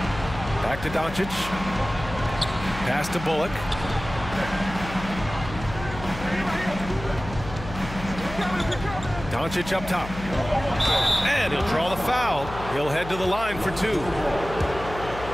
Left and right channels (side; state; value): left; noise; hum, 11 dB below the sound